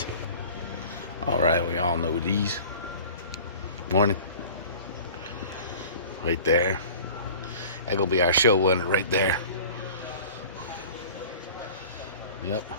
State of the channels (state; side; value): inverted; both; correlation -0.43